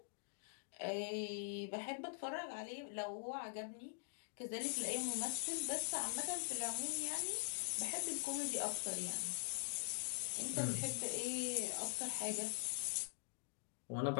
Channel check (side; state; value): right; silent; digital silence